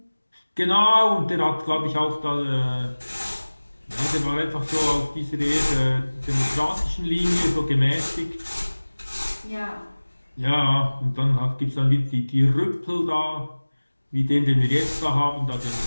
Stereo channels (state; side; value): inverted; both; correlation -1.00